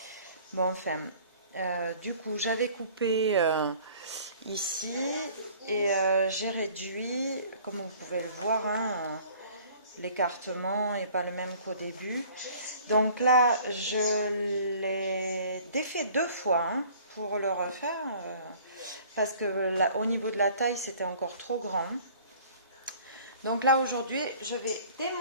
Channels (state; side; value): inverted; both; correlation -0.51